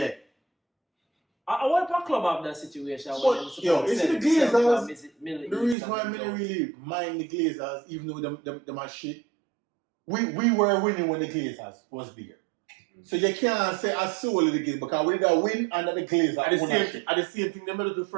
I want a club have that situation. But, yo, it's the Glazers. The reason why I didn't really mind the Glazers, even though them are shit, we were winning when the Glazers was there. So you can't say I soul of the game because we did win under the Glazers. At the same thing, they made it to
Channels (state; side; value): drops out; left; at 5.8 s